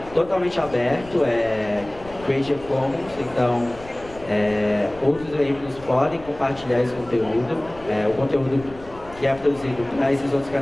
totalmente aberto, é Creative Commons, então outros veículos podem compartilhar esse conteúdo. O conteúdo que é produzido para esses outros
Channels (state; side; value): noise; left; rumble, 19 dB below the sound